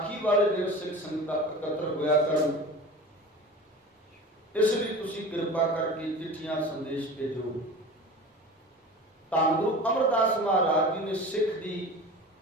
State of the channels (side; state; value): both; normal; correlation 0.35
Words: ਵਾਲੇ ਦਿਨ ਸਿੱਖ ਸੰਗਤਾਂ ਇਕੱਤਰ ਹੋਇਆ ਕਰਨ। ਇਸ ਲਈ ਤੁਸੀਂ ਕਿਰਪਾ ਕਰਕੇ ਚਿੱਠੀਆਂ, ਸੰਦੇਸ਼ ਭੇਜੋ। ਧੰਨ ਗੁਰੂ ਅਮਰਦਾਸ ਮਹਾਰਾਜ ਜੀ ਨੇ ਸਿੱਖ ਦੀ